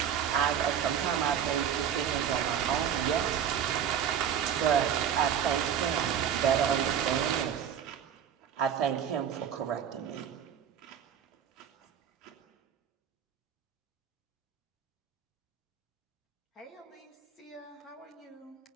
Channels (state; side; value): quieter; left; 8.8 dB